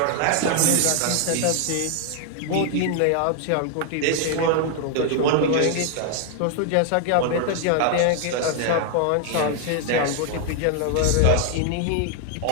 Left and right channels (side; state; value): both; different; correlation 0.00